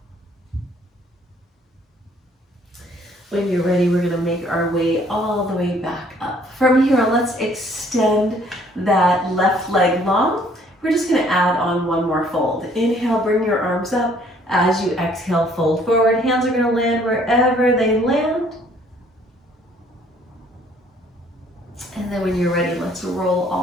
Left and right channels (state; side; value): normal; both; correlation 0.60